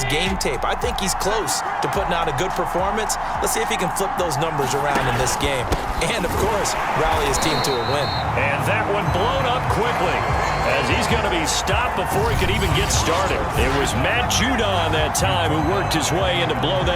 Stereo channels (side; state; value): both; identical; correlation 1.00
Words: game tape. I think he's close to putting out a good performance. Let's see if he can flip those numbers around in this game. And, of course, rally his team to a win. And that one blown up quickly as he's going to be stopped before he could even get started. It was Matt Judon that time who worked his way in to blow